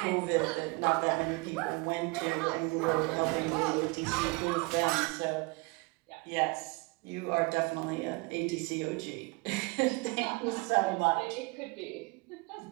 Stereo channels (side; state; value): left; quieter; 27.0 dB